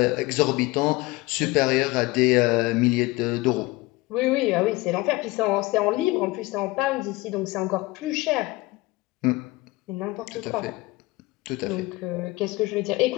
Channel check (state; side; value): quieter; right; 21.4 dB